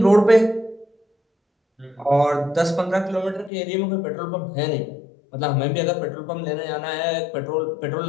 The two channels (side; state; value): right; drops out; at 3.5 s